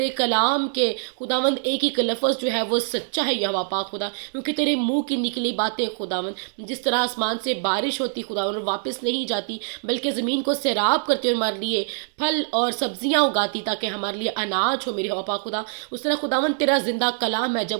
کلام کے خداون ایک ایک لفظ جو ہے وہ سچا ہے یہوہ پاک خدا، کیونکہ تیرے منہ کی نکلی باتیں خداون جس طرح آسمان سے بارش ہوتی خداون اور واپس نہیں جاتی، بلکہ زمین کو سیراب کرتے اور ہمارے لیے پھل اور سبزیاں اگاتی تاکہ ہمارے لیے اناج ہو میرے یہوہ پاک خدا. اس طرح خداون تیرا زندہ کلام ہے،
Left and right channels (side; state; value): left; silent; digital silence